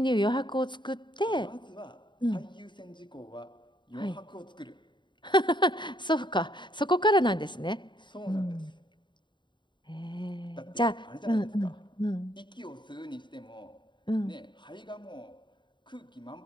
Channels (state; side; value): late; right; 0.23 ms